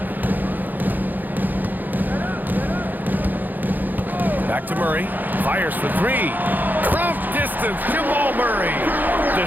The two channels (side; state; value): left; late; 0.086 ms